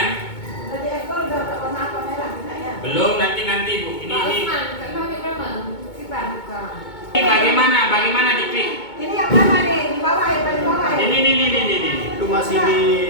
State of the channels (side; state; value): right; late; 2.2 ms